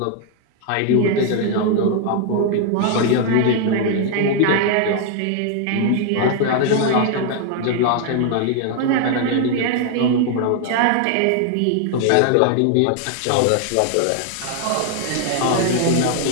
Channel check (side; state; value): both; different; correlation 0.00